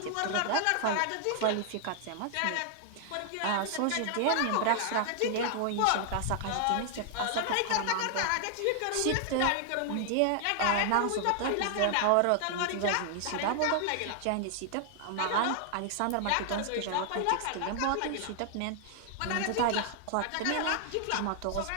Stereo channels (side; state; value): both; different; correlation 0.00